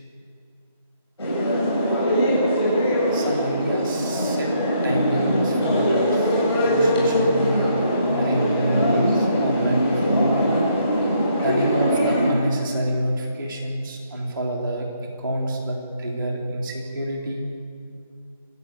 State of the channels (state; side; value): inverted; both; correlation -0.70